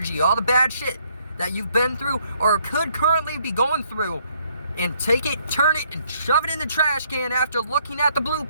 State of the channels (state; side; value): inverted; both; correlation -0.69